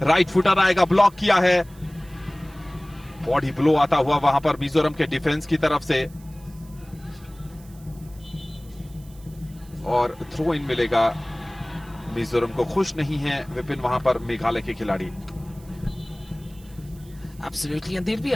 राइट फुटर आएगा, ब्लॉक किया है। बॉडी ब्लो आता हुआ वहां पर मिजोरम के डिफेंस की तरफ से, और थ्रो इन मिलेगा। मिजोरम को खुश नहीं है विपिन वहां पर मेघालय के खिलाड़ी। Absolutely, and they'll be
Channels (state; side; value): noise; right; hiss, 26 dB below the sound